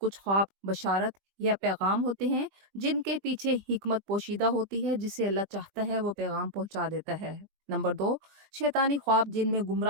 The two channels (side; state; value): left; late; 20 ms